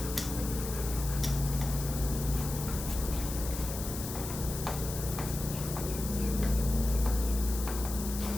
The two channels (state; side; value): noise; left; hiss, 8 dB below the sound